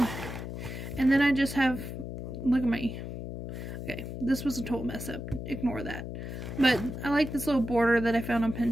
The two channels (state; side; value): noise; left; hum, 7 dB below the sound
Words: And then I just have, look at my, okay, this was a total mess up, ignore that. But I like this little border that I found on